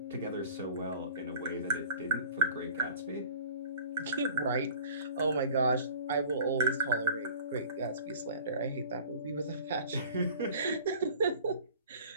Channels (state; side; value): inverted; both; correlation -0.46